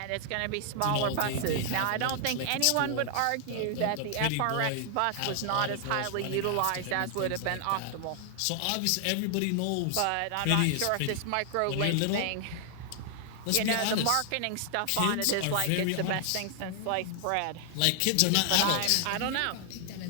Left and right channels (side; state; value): both; different; correlation 0.00